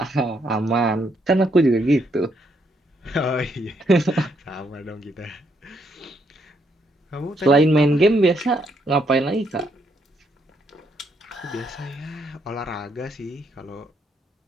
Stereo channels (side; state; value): both; normal; correlation 0.74